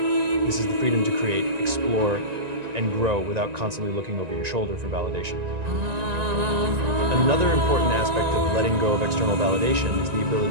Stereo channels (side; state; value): left; late; 1.9 ms